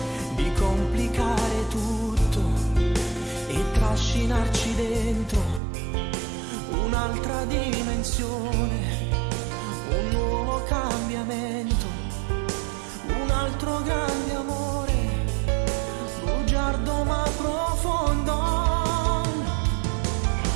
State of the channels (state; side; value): drops out; left; at 5.6 s